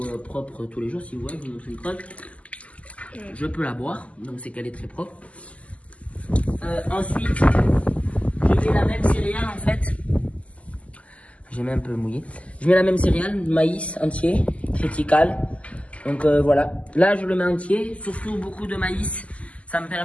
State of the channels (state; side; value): late; right; 0.066 ms